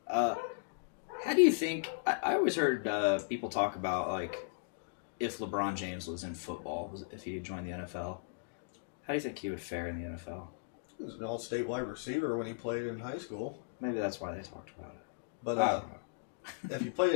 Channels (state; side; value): quieter; right; 39.1 dB